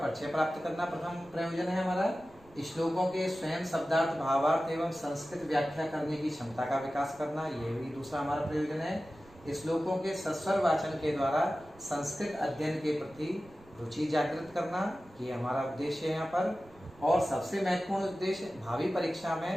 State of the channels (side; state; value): right; noise; rumble, 25 dB below the sound